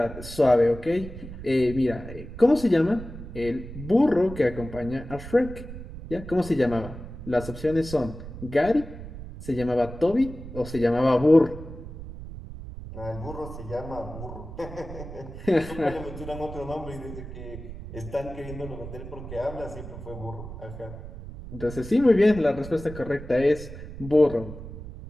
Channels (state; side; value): noise; right; rumble, 12 dB below the sound